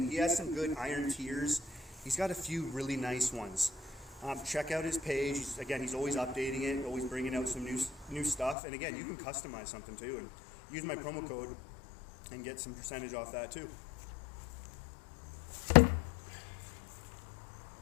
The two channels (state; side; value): drops out; right; at 8.6 s